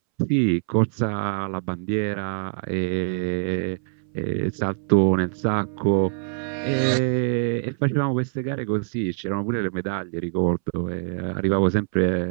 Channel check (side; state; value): left; silent; 62 dB below the other